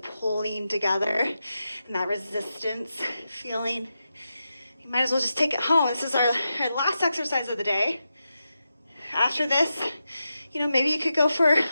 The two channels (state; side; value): inverted; both; correlation -0.89